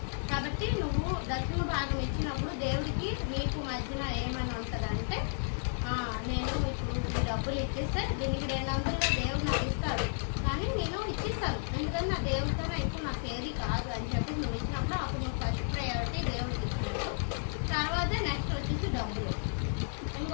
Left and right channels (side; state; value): right; silent; 56 dB below the other